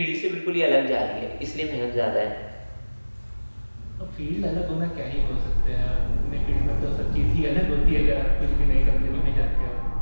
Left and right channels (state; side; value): inverted; both; correlation -1.00